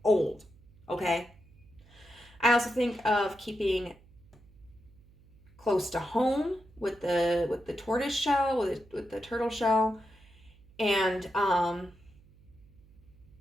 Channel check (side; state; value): right; noise; hum, 26 dB below the sound